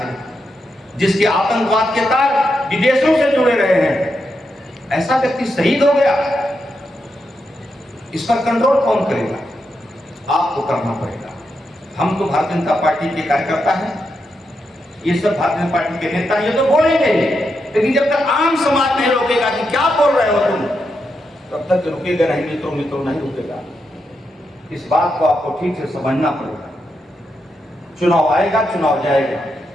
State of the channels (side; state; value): both; normal; correlation 0.84